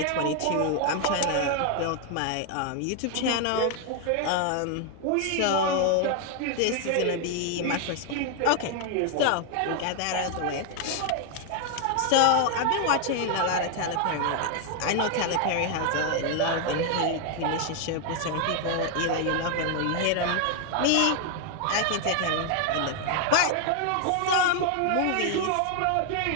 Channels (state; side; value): different; both; correlation 0.00